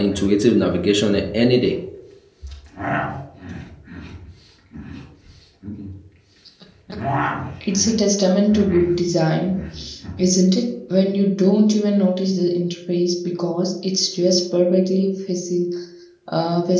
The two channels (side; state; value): both; identical; correlation 1.00